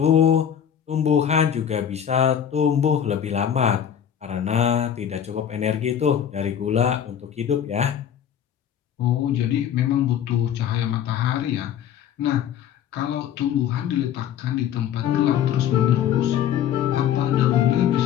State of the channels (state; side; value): quieter; right; 9.4 dB